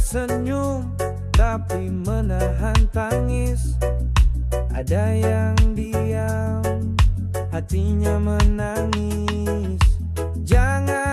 tapi menahan tangis. Ada yang diam, hatinya menangis.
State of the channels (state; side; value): identical; both; correlation 1.00